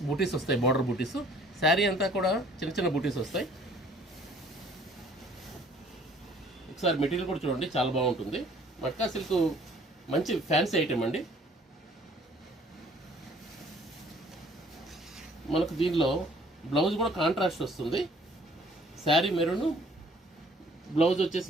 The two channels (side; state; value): both; normal; correlation 0.56